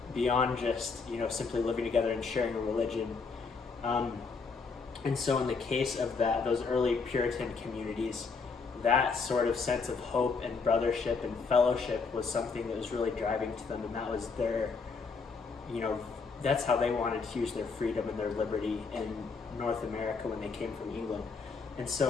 beyond just, simply living together and sharing a religion. And so in the case of those early Puritan communities, that sort of sense of hope and brothership and fellowship was something that was really driving to them, and that was their, that's how they wanted to use their freedom and their liberty in North America when they came from England. And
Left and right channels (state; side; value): quieter; right; 4.8 dB